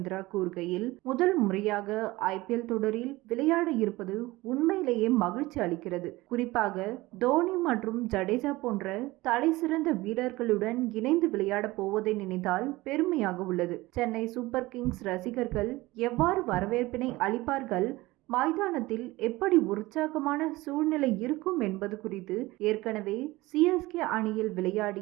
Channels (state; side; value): quieter; left; 19.9 dB